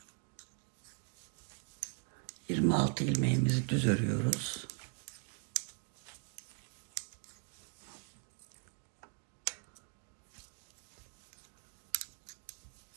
...26 ilmeğimizi düz örüyoruz.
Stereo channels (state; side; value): quieter; left; 37.5 dB